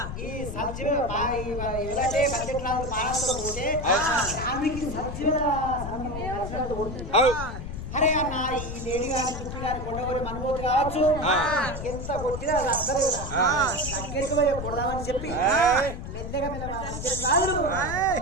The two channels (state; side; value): noise; left; rumble, 7 dB below the sound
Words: ఈ సబ్జీ ఎవరైతే బడ్జెట్ రాదు పాలనతో పోతే ఆమెకి సబ్జీల అరే అన్న ఈ లేడీ గారి చుట్టూ గారి కొండగోలు మనబోతు కావచ్చు ఎంత కొట్టినా అది అసలు దగ్గరికి పోయి కొడదామని చెప్పి మెల్లగా